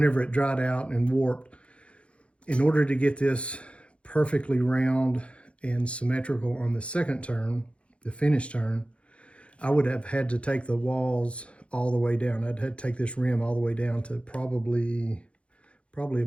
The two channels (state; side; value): late; right; 0.060 ms